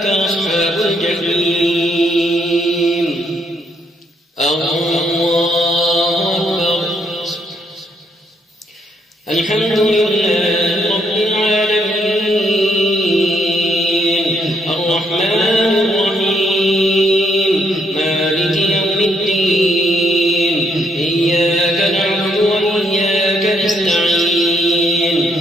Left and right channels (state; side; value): normal; both; correlation 0.73